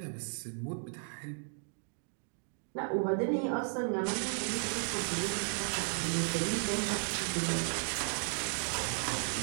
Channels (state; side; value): silent; left; digital silence